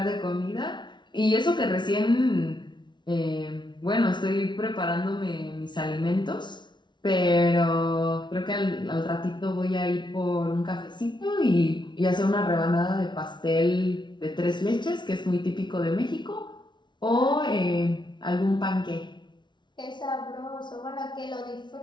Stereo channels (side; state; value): right; late; 0.22 ms